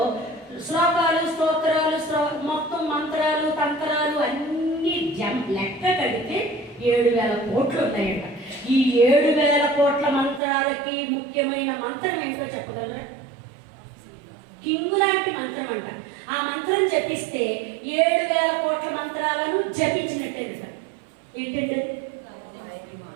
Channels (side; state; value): left; drops out; at 10.4 s